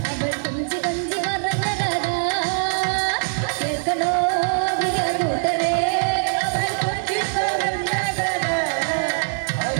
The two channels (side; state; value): left; silent; digital silence